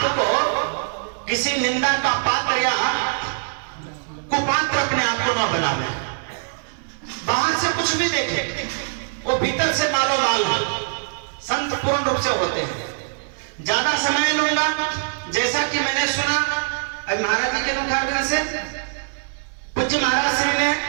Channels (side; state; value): left; silent; digital silence